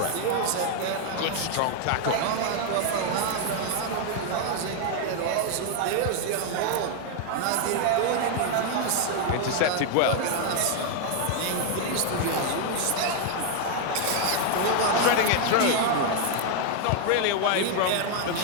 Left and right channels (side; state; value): both; different; correlation 0.00